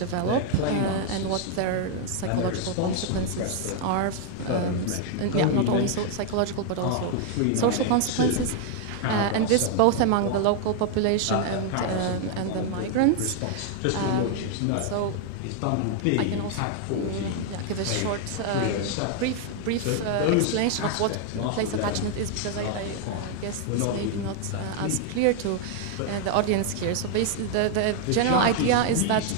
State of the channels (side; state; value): both; different; correlation 0.00